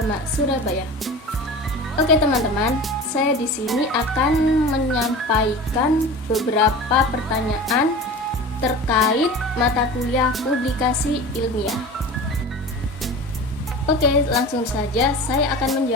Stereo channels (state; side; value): normal; both; correlation 0.35